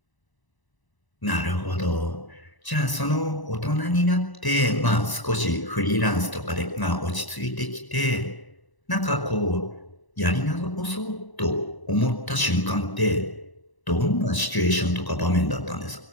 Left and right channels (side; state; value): right; late; 1.0 ms